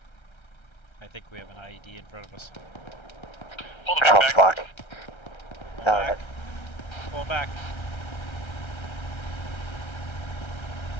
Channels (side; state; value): right; late; 1.3 ms